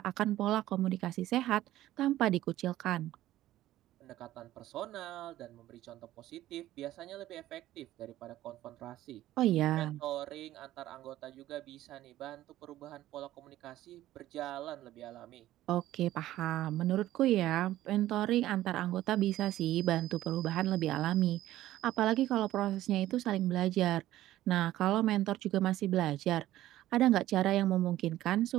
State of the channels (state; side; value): quieter; left; 14.4 dB